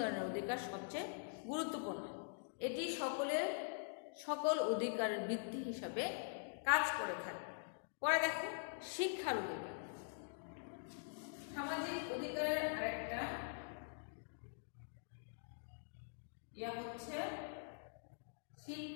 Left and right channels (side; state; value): right; silent; digital silence